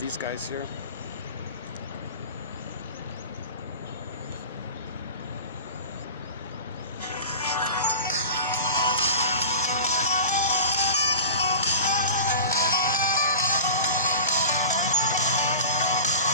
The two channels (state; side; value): inverted; both; correlation -0.36